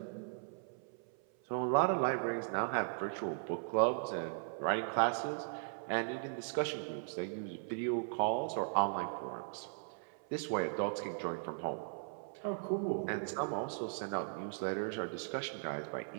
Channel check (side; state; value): left; silent; 52 dB below the other